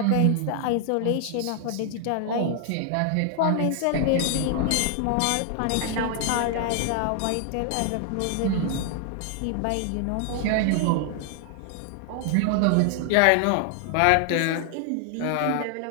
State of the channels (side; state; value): both; different; correlation 0.00